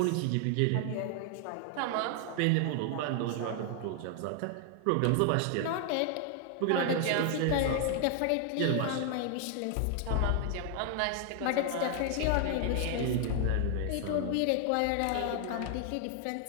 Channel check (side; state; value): both; different; correlation 0.00